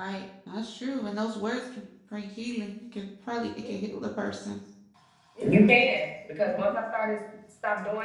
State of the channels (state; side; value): identical; both; correlation 1.00